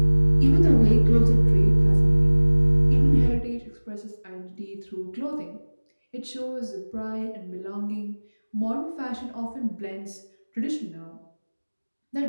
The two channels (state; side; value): inverted; both; correlation -1.00